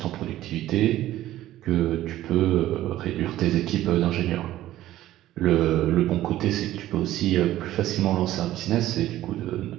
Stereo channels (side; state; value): left; quieter; 14.2 dB